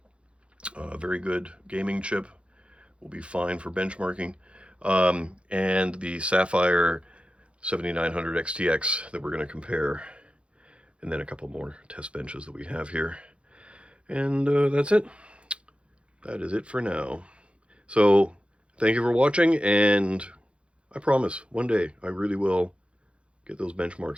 Very good gaming chip. Will be fine for benchmarking. And the Sapphire 7900 XTX that we're going to compare. And then a couple more test benches that we have here. And that's it. That is it for now. So thank you for watching, and I promise one day I really will get those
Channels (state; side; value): late; left; 0.059 ms